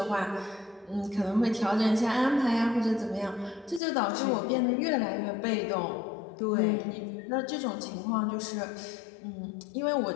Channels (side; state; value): right; drops out; at 3.8 s